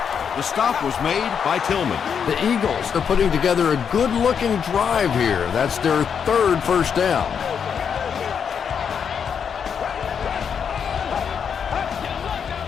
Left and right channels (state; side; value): quieter; right; 7.1 dB